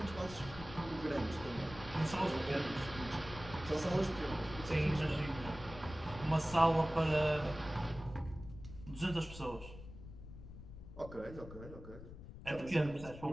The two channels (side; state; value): left; noise; rumble, 13 dB below the sound